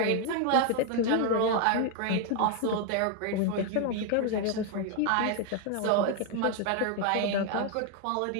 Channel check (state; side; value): different; both; correlation 0.01